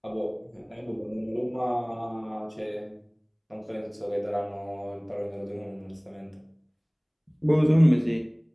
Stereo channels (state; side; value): identical; both; correlation 1.00